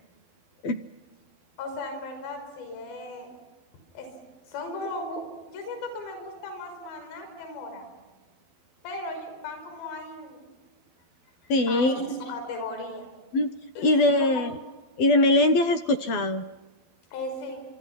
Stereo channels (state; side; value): late; right; 12 ms